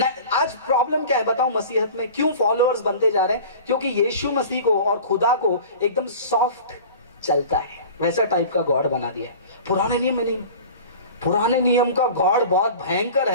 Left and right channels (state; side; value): inverted; both; correlation -0.40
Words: आज प्रॉब्लम क्या है बताऊं मसीहत में? क्यों फॉलोअर्स बनते जा रहे हैं? क्योंकि यीशु मसीह को और खुदा को एकदम सॉफ्ट चलता है, वैसा टाइप का गॉड बना दिया है। पुराने नियम में नहीं। पुराने नियम का गॉड बहुत भयंकर